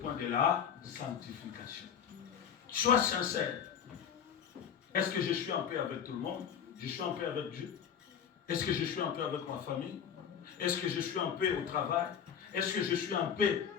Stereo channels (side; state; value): right; quieter; 8.0 dB